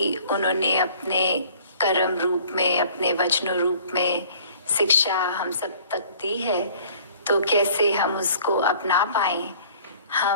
उन्होंने अपने कर्म रूप में, अपने वचनों रूप में शिक्षा हम सब तक दी है, तो कैसे हम उसको अपना पाए।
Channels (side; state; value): both; inverted; correlation -0.52